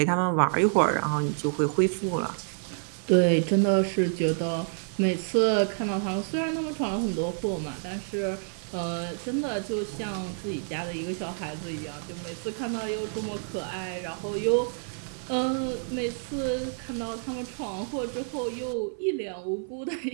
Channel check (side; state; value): left; silent; 59 dB below the other